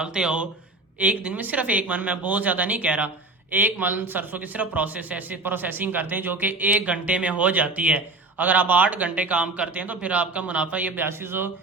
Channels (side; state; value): left; quieter; 3.3 dB